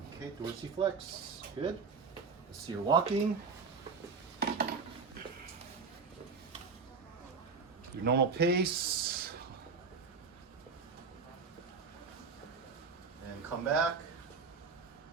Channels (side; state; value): left; quieter; 5.0 dB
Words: Okay, dorsiflex. Good. Let's see your walking. Your normal pace. And come back.